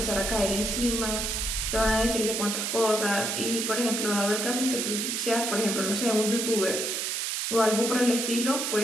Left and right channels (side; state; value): right; noise; hiss, 1 dB below the sound